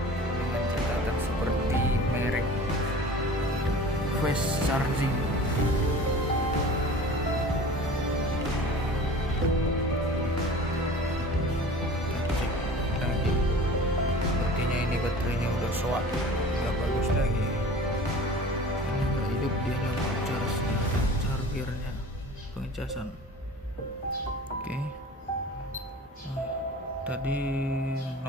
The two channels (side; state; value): both; normal; correlation 0.40